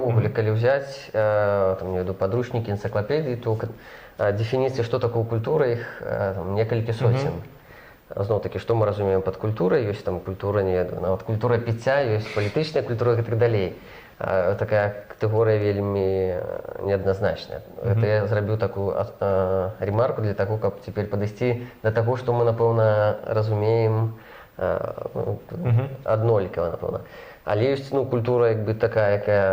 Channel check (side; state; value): both; identical; correlation 1.00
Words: калі взять, я веду подручники, энциклопедии, то дефиниции, что такое культура, их некалькі сотен. Зноў-такі, што мы разумеем пад культурай, ёсць культура, нават культура піцця, ёсць палітычная культура і так далей. Такая катэгорыя вельмі неадназначная. Гэта я зрабіў такую ремарку для таго, каб цяпер падысці да таго, што мы, напэўна, разумеем аднолькава, напэўна. Але ёсць культура такая,